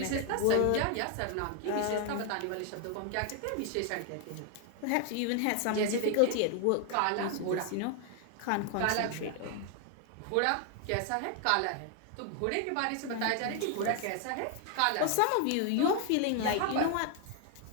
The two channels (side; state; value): both; different; correlation 0.00